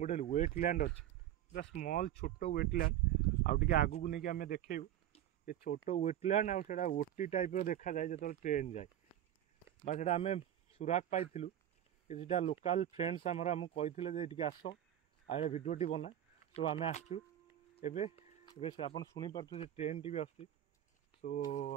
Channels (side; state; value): left; quieter; 11.4 dB